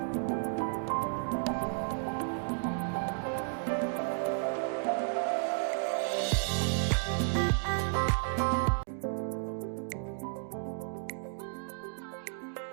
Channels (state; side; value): silent; left; digital silence